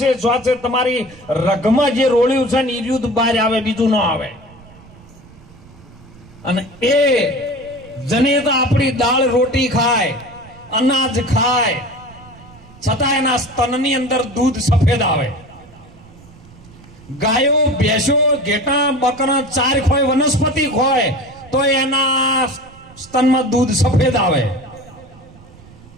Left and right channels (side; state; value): right; noise; rumble, 23 dB below the sound